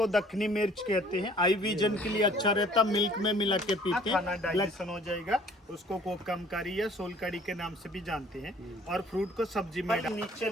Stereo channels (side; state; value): both; normal; correlation 0.55